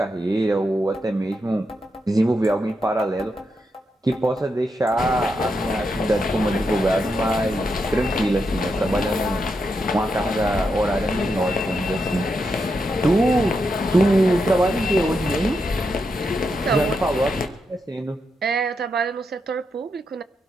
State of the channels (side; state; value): both; normal; correlation 0.84